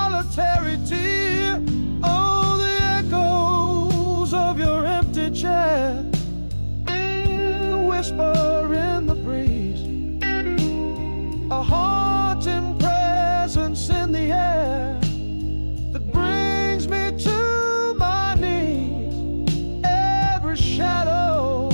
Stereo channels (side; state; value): both; inverted; correlation -1.00